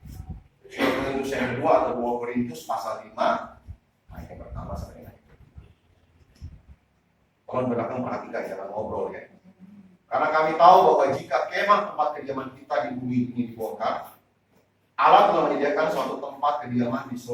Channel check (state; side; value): identical; both; correlation 1.00